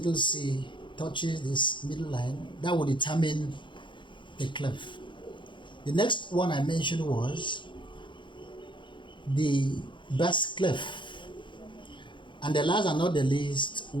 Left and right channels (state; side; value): late; right; 0.23 ms